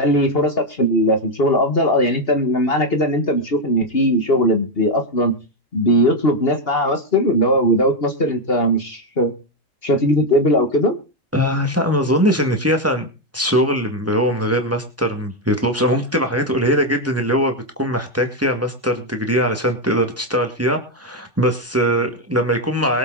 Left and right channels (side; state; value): both; normal; correlation 0.05